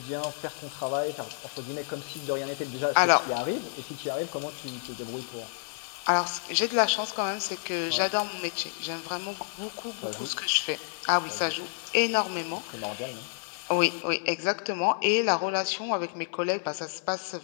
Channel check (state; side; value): silent; right; digital silence